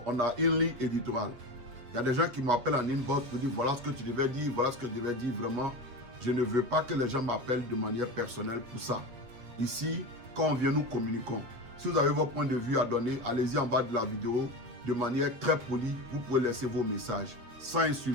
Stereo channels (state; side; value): late; left; 8.3 ms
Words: a une ligne éditoriale. Il y a des gens qui m'appellent en inbox pour dire voilà ce que tu devais dire, voilà ce que tu devais dire. Vraiment, je ne veux pas que les gens m'appellent de manière personnelle pour ça. Ici, quand on vient, nous communiquons. Si vous avez votre point de vue à donner, allez-y en bas de la vidéo. De manière très polie, vous pouvez laisser vos messages sans